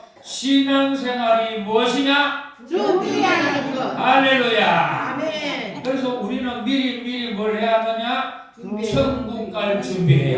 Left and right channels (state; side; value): identical; both; correlation 1.00